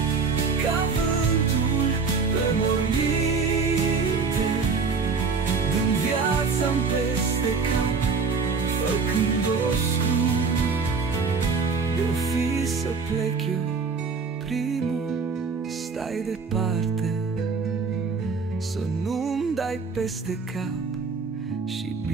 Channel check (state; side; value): quieter; left; 4.9 dB